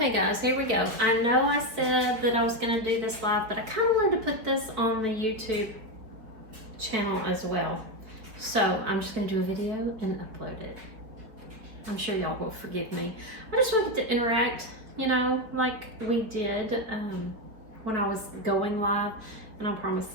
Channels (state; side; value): late; left; 4.8 ms